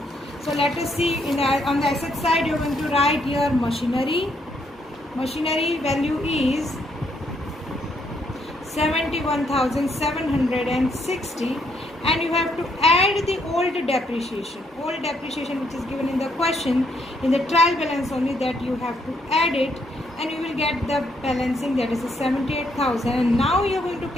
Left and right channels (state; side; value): normal; both; correlation 0.73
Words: So let us see, on the asset side you are going to write here machinery. Machinery value is 71,760, and you have to add the old depreciation which is given in the question, in the trial balance only, that you have to add it, and you will get the balancing, that is 78,000. And now you are going to